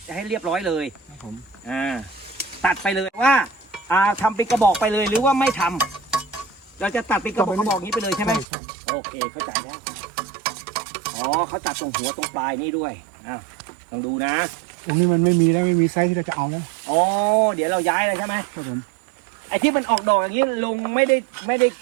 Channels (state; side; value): drops out; left; at 8.5 s